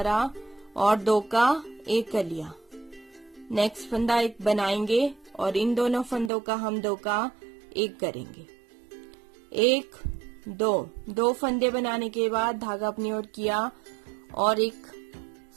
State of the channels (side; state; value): left; drops out; at 6.3 s